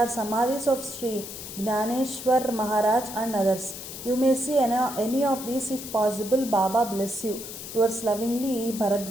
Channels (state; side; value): noise; left; hiss, 10 dB below the sound